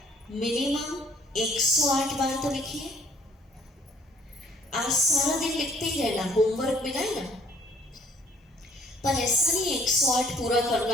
मिनिमम 108 बार तो लिखिए। आज सारा दिन लिखते ही रहना, होमवर्क मिला है ना, पर ऐसा नहीं 108 पूरा करना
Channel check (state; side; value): normal; both; correlation 0.60